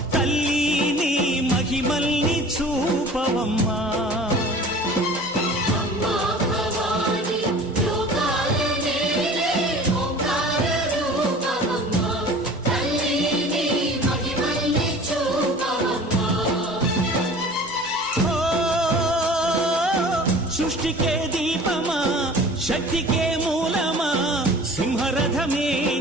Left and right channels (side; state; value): both; normal; correlation 0.43